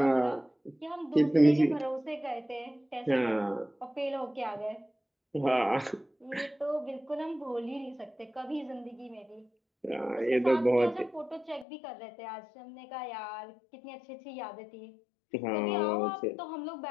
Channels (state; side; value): drops out; right; at 11.7 s